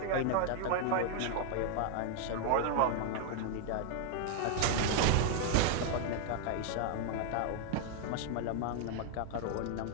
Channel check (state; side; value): different; both; correlation 0.00